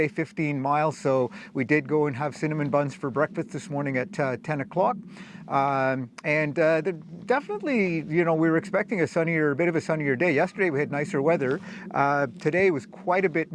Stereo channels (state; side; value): identical; both; correlation 1.00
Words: 15 miles, so we did go and have cinnamon buns for breakfast this morning at 10 o'clock. Definitely, you know, we were expecting a bit of a sunnier day. Yesterday we had nicer weather. Today was quite a bit